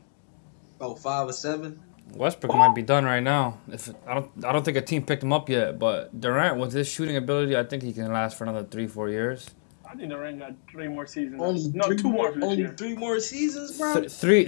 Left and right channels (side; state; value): right; silent; digital silence